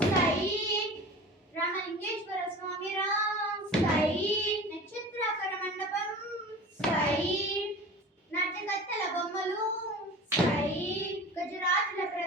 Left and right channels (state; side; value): normal; both; correlation 0.37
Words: రామలింగేశ్వర స్వామి రా. నక్షత్రాకర మండపం, నాట్యకత్తెల బొమ్మలు, గజరాజుల